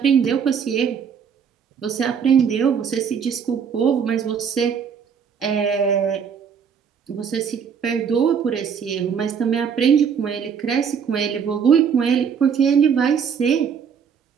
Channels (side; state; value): left; quieter; 7.0 dB